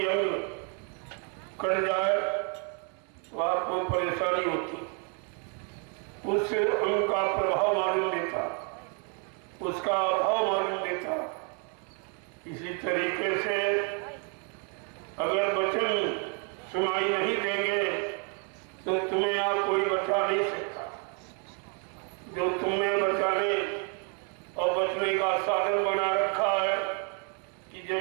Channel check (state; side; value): quieter; left; 38.5 dB